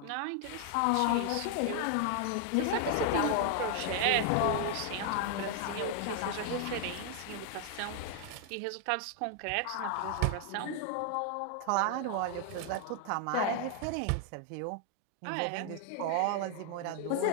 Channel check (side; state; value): both; different; correlation 0.00